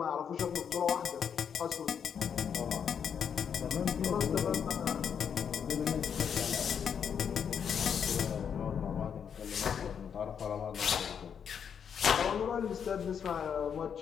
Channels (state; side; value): quieter; right; 7.5 dB